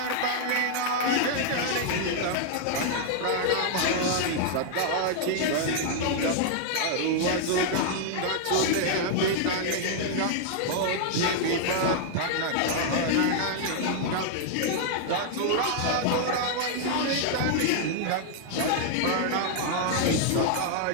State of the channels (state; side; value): different; both; correlation -0.01